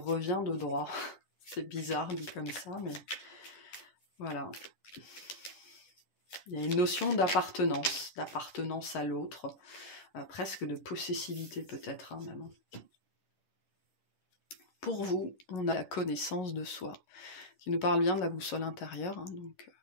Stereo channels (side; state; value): right; late; 11 ms